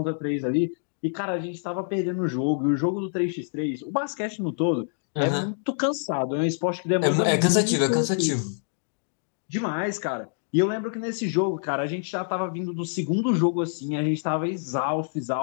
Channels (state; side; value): silent; right; digital silence